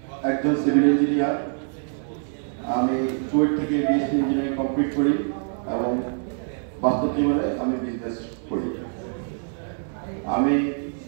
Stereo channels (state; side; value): silent; left; 62 dB below the other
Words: একজন সিভিল ইঞ্জিনিয়ার। আমি চুয়েট থেকে বিএসসি ইঞ্জিনিয়ারিং কমপ্লিট করি এবং বাস্তব জীবনে আমি বিজনেস করি। আমি